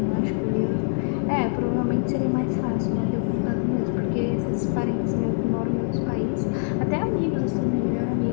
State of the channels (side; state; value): right; silent; digital silence